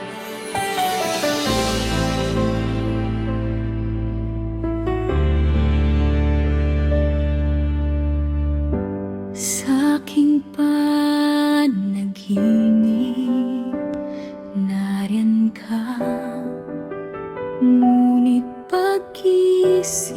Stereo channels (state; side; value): identical; both; correlation 1.00